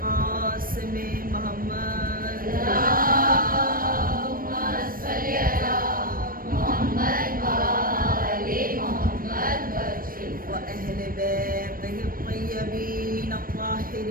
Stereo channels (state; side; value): late; left; 0.41 ms